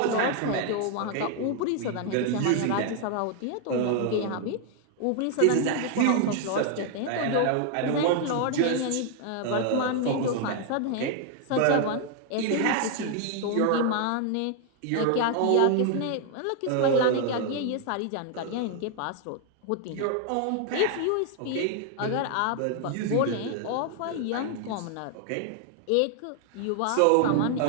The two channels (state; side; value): different; both; correlation 0.00